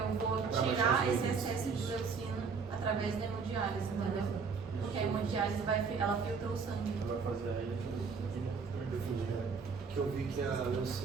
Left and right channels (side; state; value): left; quieter; 5.3 dB